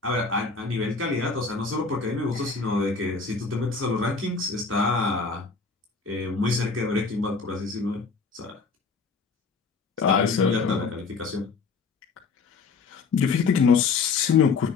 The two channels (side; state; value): right; quieter; 4.7 dB